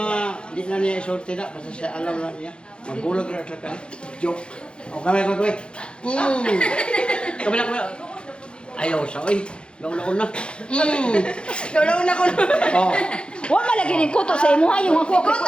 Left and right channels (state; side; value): late; right; 0.055 ms